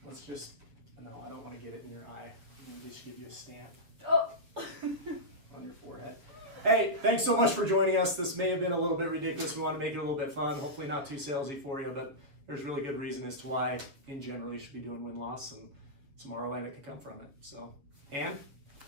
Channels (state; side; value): late; left; 7.4 ms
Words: Let's just, no, I don't want to get it in your eye. I'm going to just give you a stamp Oh. on your forehead. Hey, thanks so much for joining us. This may have been a little bit ridiculous. We want to make it a little bit fun. Hopefully not too salesy for you, but there's really good reason as to why, in general, you should be doing win-loss and some ROI that can come from it. So, Anne,